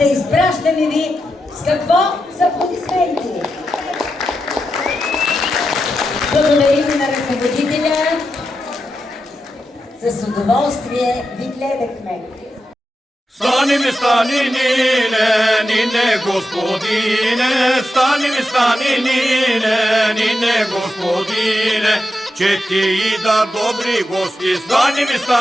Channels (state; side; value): normal; both; correlation 0.88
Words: Изпращаме ви с какво? С аплодисменти. Благодарим на ръководителя. С удоволствие ви гледахме. Stani mi stani nine gospodine, stani mi stani nine gospodine, će ti i da dobri gosti, stani mi